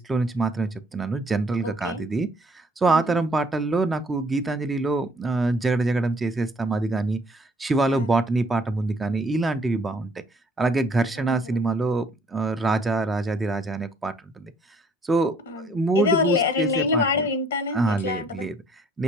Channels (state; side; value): normal; both; correlation 0.60